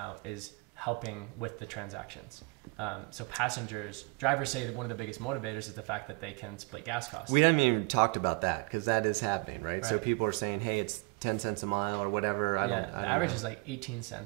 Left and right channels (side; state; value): left; quieter; 30.3 dB